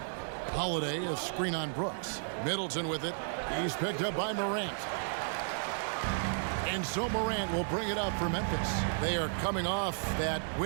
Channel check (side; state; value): left; silent; digital silence